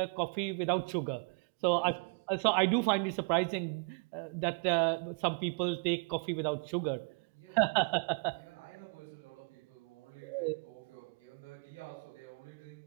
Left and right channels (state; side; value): quieter; left; 35.7 dB